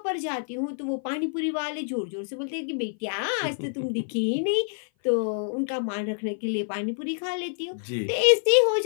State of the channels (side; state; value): right; silent; 56 dB below the other